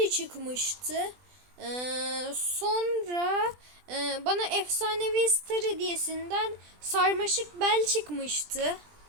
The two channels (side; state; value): left; late; 20 ms